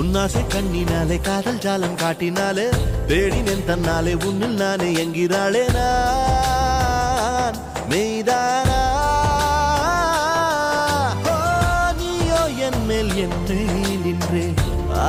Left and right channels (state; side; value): identical; both; correlation 1.00